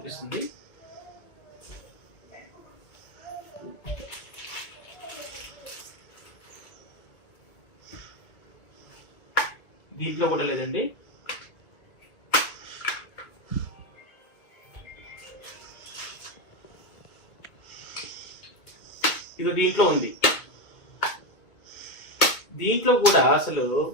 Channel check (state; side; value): late; right; 2.2 ms